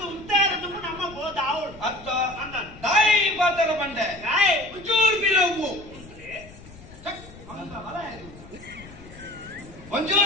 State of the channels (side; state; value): left; noise; rumble, 19 dB below the sound